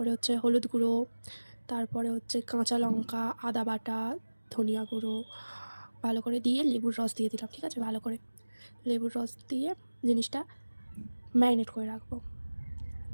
হচ্ছে হলুদ গুঁড়ো, তারপরে হচ্ছে কাঁচা লঙ্কা, আদা বাটা, ধনিয়া গুঁড়ো ভালো করে দিয়ে লেবুর রস দিয়ে দিলাম। ঠিক আছে, ভালো করে লেবুর রস দিয়ে জিনিসটা ম্যারিনেট করে রাখবো।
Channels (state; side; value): inverted; both; correlation -1.00